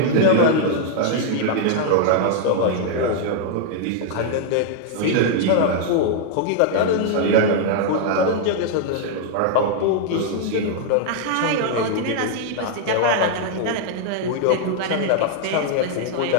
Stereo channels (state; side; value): different; both; correlation 0.00